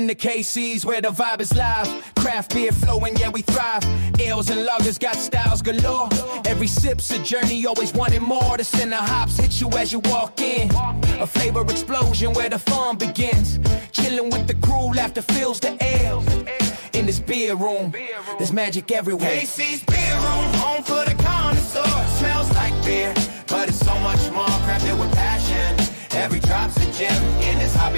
KC's where the vibe is live. Craft beer flowing, yeah, we thrive. Ales and lagers got styles galore. Every sip's a journey, always wanting more. The center hops hit you as you walk in. A flavor explosion where the fun begins. Chilling with the crew, laughter fills the air. In this beer room, there's magic everywhere. KC's Beer Room, home for the connoisseur. Smells like beer, but it's so much more. Crafted with passion. Every drop's a gem. In this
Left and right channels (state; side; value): inverted; both; correlation -1.00